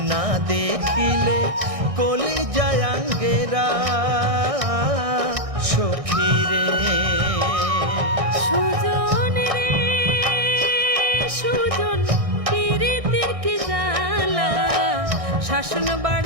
না দেখিলে কলিজায় আঙ্গেরা সখীরে। সুজন রে সুজন, পীড়িতের কি জ্বালা, শাসন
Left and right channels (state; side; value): late; left; 1.6 ms